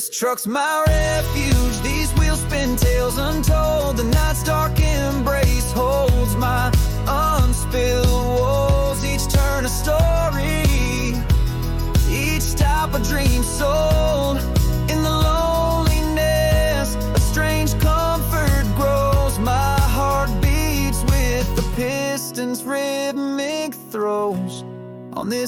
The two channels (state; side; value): identical; both; correlation 1.00